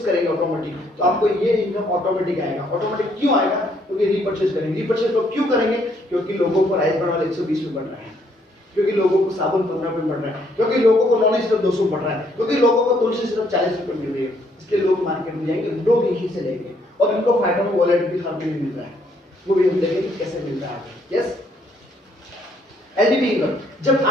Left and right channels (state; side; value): normal; both; correlation 0.69